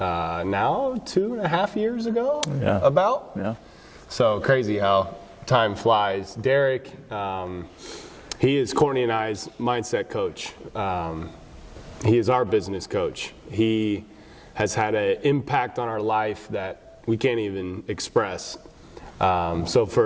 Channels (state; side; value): identical; both; correlation 1.00